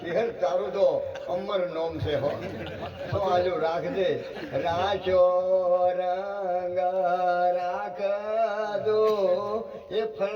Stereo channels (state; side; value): identical; both; correlation 1.00